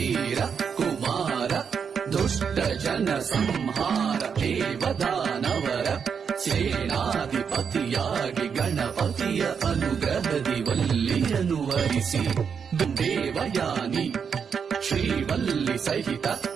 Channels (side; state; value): left; quieter; 6.7 dB